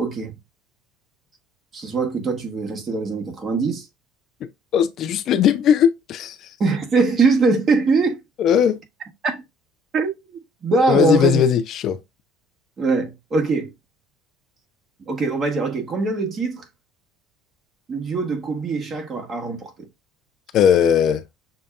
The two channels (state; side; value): normal; both; correlation 0.59